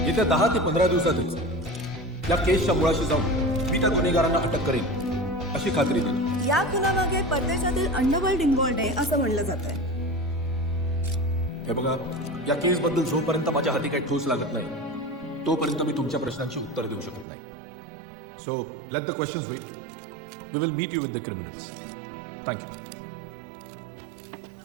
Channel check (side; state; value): left; drops out; at 17.2 s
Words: येत्या 10 ते 15 दिवसातच या केसच्या मुळाशी जाऊन मी त्या गुन्हेगारांना अटक करेन अशी खात्री दिली. या खुनामागे परदेशातील अंडरवर्ल्ड इन्व्हॉल्ड आहे असं म्हणलं जात आहे. हे बघा, या केसबद्दल जोपर्यंत माझ्या हाती काही ठोस लागत नाही तोपर्यंत मी तुमच्या प्रश्नांची उत्तर देऊ शकत नाही. So let the questions wait. We will meet you with the criminals. Thank you.